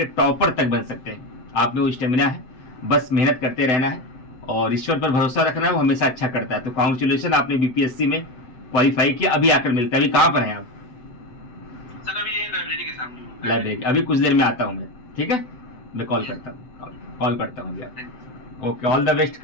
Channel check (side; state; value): right; late; 7.9 ms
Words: टॉपर तक बन सकते हैं। आप में वो स्टेमिना है, बस मेहनत करते रहना है और ईश्वर पर भरोसा रखना है, वो हमेशा अच्छा करता है। तो कॉन्ग्रेचुलेशन, आपने बीपीएससी में क्वालिफाई किया। अभी आकर मिलता है। अभी कहाँ पर हैं आप? सर अभी ये लाइब्रेरी के सामने। लाइब्रेरी। अभी कुछ देर में आता हूँ मैं, ठीक है? मैं कॉल करता हूँ, कॉल करता हूँ भैया। Okay, all the best